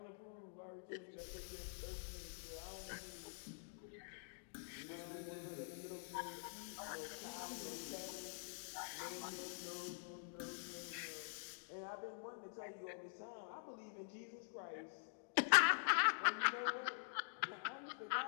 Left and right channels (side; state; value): right; silent; digital silence